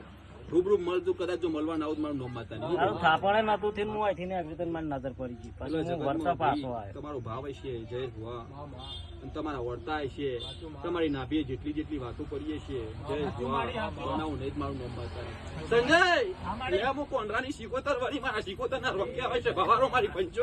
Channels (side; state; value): both; identical; correlation 1.00